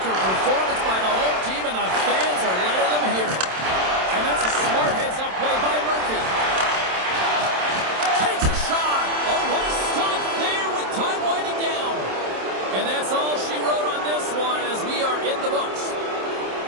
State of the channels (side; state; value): left; late; 27 ms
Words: performance by the home team, and the fans are letting them hear it. And that's a smart heads-up play by Murphy. Takes a shot. Oh, what a stop there with time winding down. And that's all she wrote on this one as we are in the books.